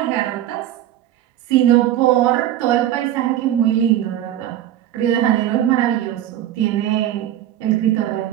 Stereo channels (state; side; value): quieter; left; 12.3 dB